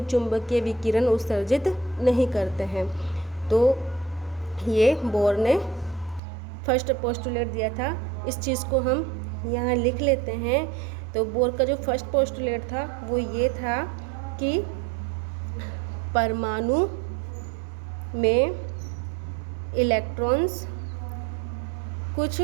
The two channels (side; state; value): left; drops out; at 6.2 s